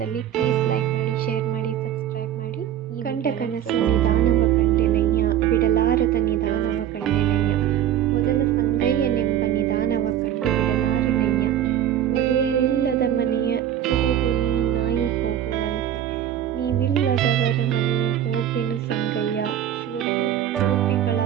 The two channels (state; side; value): quieter; left; 10.8 dB